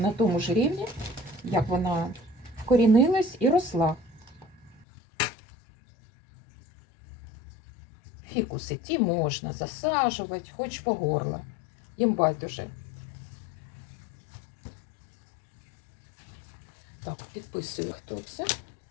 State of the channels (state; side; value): drops out; right; at 4.9 s